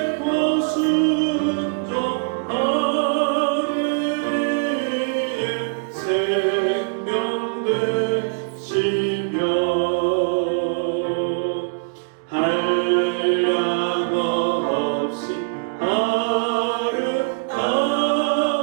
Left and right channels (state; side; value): quieter; left; 37.6 dB